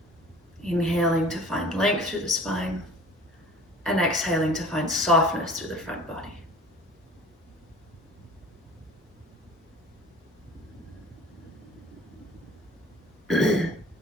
Inhaling to find length through the spine, and exhaling to find softness through the front body.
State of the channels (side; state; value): both; normal; correlation 0.45